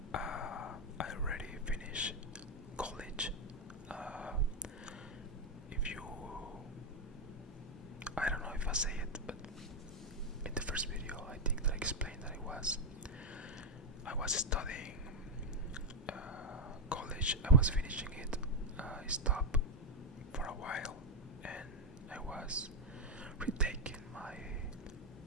I already finished college. If you, I don't know if I say it, but in the first video, I think that I explained that I was studying college. I was finishing it. I stopped for a while, and I was retaking my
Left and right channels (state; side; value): normal; both; correlation 0.04